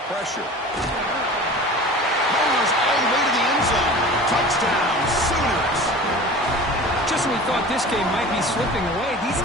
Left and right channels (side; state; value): both; normal; correlation 0.39